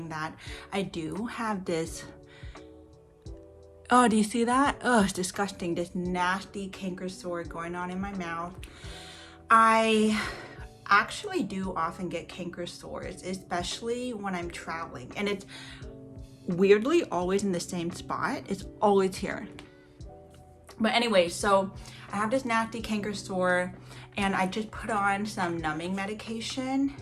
that I do have this. Oh, do you see that? Oh, it's disgusting. This nasty canker sore going on in my mouth. I actually do often get canker sores, especially when I'm traveling. And it's weirdly always in the same spot. It's always here. But anyway, so I have this nasty canker sore and I just put on some numbing medication.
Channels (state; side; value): identical; both; correlation 1.00